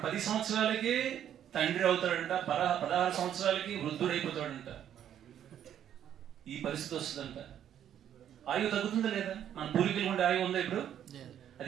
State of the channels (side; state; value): left; quieter; 10.1 dB